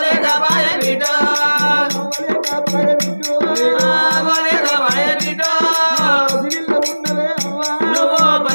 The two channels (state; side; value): inverted; both; correlation -1.00